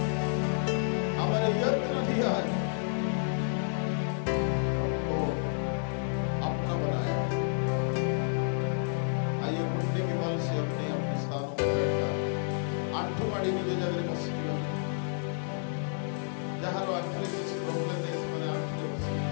हमारे यत्न दिया है, हमको अपना बनाया। आइए घुटने के बल से अपने अपने स्थानों पर बैठा आंठू माड़ी निज जगह बसिया जहाँ आंठले किसी प्रॉब्लम नहीं समझ आंठले बसी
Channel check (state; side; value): silent; right; 56 dB below the other